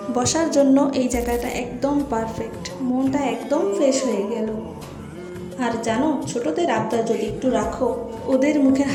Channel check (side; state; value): both; identical; correlation 1.00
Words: বসার জন্য। এই জায়গাটা একদম পারফেক্ট, মনটা একদম ফ্রেশ হয়ে গেল। আর জানো, ছোটদের আবদার যদি একটু রাখো, ওদের মুখের